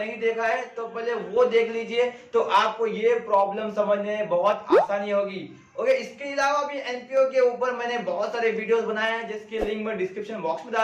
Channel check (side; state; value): both; identical; correlation 1.00